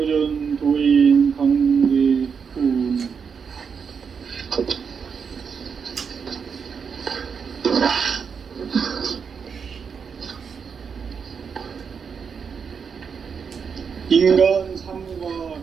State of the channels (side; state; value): left; quieter; 6.3 dB